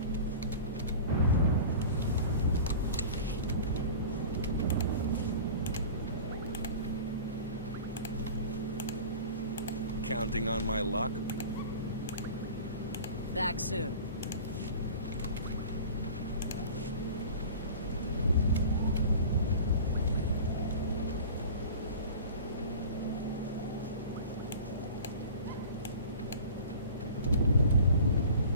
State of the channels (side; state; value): both; inverted; correlation -0.39